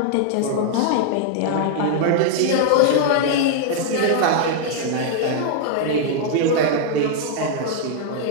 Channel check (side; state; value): both; different; correlation -0.01